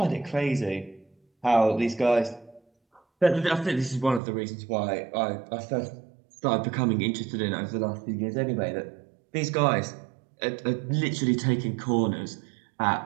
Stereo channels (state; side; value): drops out; left; at 4.2 s